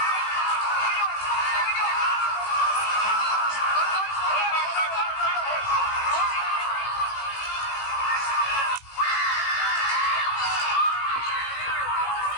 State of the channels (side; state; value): right; late; 18 ms